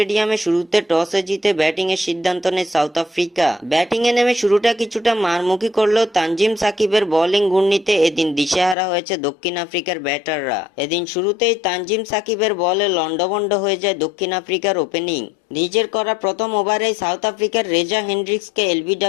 শুরুতে টসে জিতে ব্যাটিং এর সিদ্ধান্ত নেয় সাউথ আফ্রিকা। ব্যাটিং এ নেমে শুরুটা কিছুটা মারমুখী করলেও তানজিম সাকিবের বোলিং ঘূর্ণিতে এদিন দিশেহারা হয়েছে দক্ষিণ আফ্রিকার ব্যাটাররা। এদিন শুরুতেই তানজিম সাকিবের বলে লন্ডভন্ড হয়ে যায় দক্ষিণ আফ্রিকার ওপেনিং। নিজের করা প্রথম ওভারেই সাউথ আফ্রিকার রেজা হেন্ড্রিক্সকে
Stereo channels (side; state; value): right; drops out; at 8.8 s